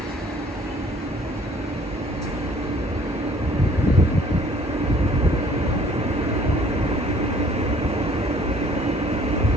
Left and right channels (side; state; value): both; normal; correlation 0.57